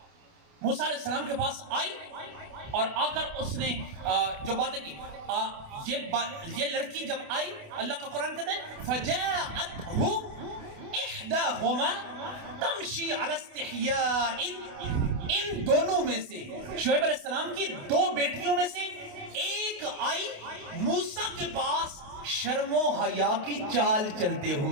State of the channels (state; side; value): late; left; 28 ms